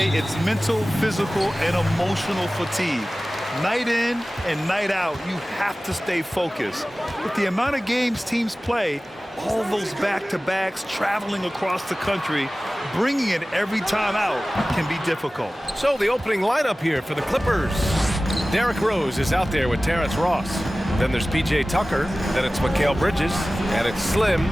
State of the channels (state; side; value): normal; both; correlation 0.97